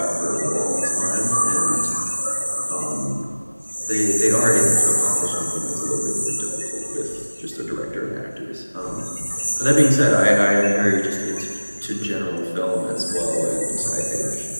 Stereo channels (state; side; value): inverted; both; correlation -1.00